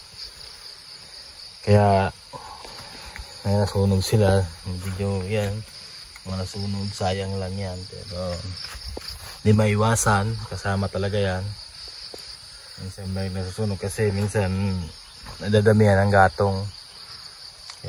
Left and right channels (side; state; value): both; identical; correlation 1.00